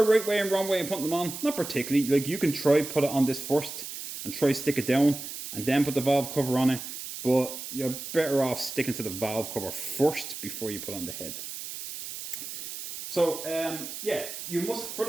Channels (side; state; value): right; noise; hiss, 9 dB below the sound